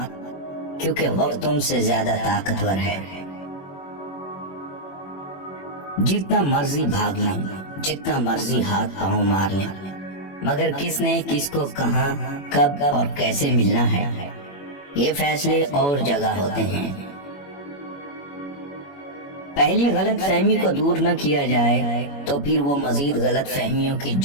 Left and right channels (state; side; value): late; right; 21 ms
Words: کیونکہ وقت تم سے زیادہ طاقتور ہے۔ جتنا مرضی بھاگ لیں، جتنا مرضی ہاتھ پاؤں مار لیں، مگر کس نے کس کو کہاں کب اور کیسے ملنا ہے یہ فیصلے اور جگہ ہوتے ہیں۔ پہلی غلط فہمی کو دور نہ کیا جائے تو پھر وہ مزید غلط فہمیوں کی